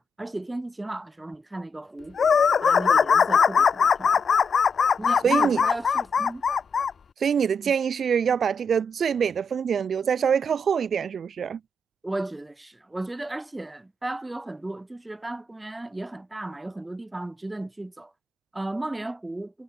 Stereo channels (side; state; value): both; normal; correlation 0.81